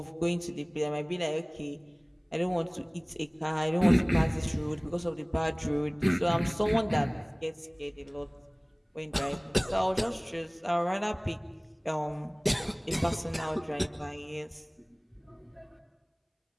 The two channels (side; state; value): both; identical; correlation 1.00